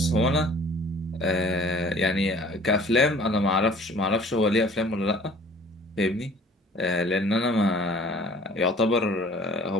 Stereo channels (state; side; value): normal; both; correlation 0.51